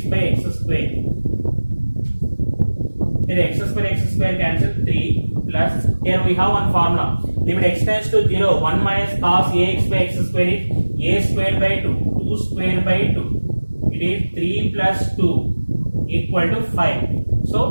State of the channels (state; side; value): inverted; both; correlation -1.00